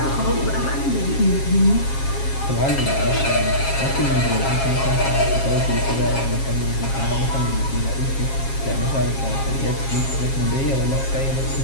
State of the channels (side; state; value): right; late; 7.4 ms